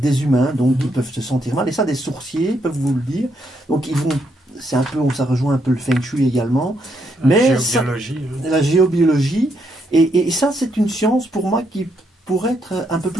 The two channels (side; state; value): both; normal; correlation 0.76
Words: humains, donc ils peuvent se sentir mal. Et ça, des sourciers peuvent vous le dire. Donc ils vont, c'est un peu, ça rejoint un peu le feng shui également. Mais la géobiologie. Et ça, c'est une science pour moi qui pourrait être un peu